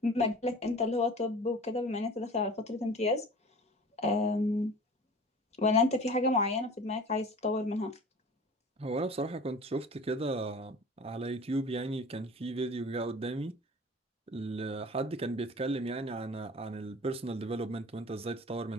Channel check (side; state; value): both; normal; correlation 0.41